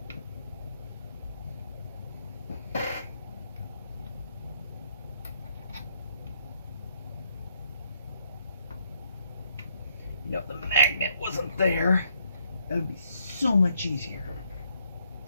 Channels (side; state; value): both; inverted; correlation -0.71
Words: You know, if the magnet wasn't there, that would be so much easier.